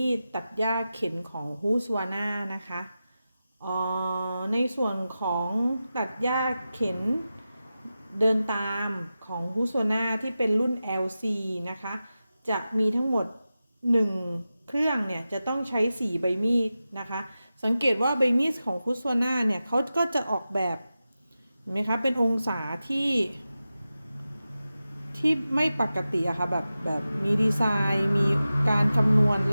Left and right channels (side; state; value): both; inverted; correlation -0.93